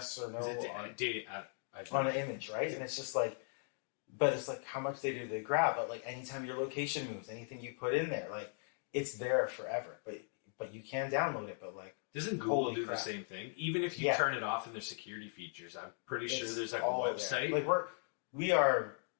or no on an image, right? And it's just like... But it's like, how much data do they grab? But, like, anytime your location moves, anything you put in there, like, it's there forever. But you can download it, but, like... Doesn't Google do the same thing? Even if you turn it off in their security features, I'm pretty sure there's, like, a website. There. Like, we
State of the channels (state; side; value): silent; right; 52 dB below the other